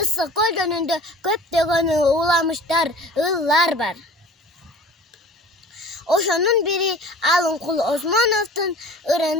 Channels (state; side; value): normal; both; correlation 0.44